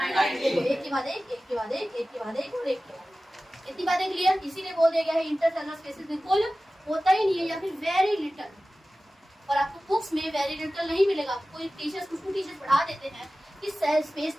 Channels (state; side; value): normal; both; correlation 0.96